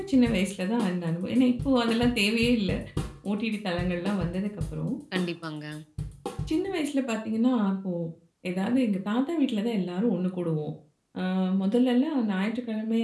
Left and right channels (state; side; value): identical; both; correlation 1.00